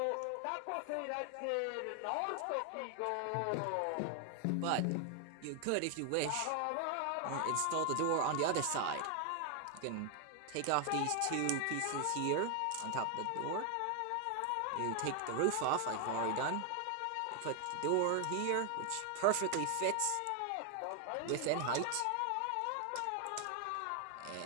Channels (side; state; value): both; different; correlation 0.00